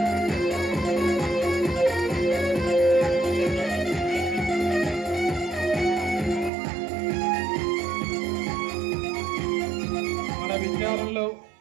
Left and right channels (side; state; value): left; drops out; at 6.5 s